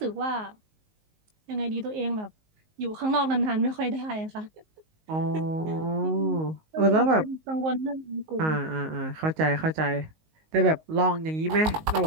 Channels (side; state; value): left; late; 19 ms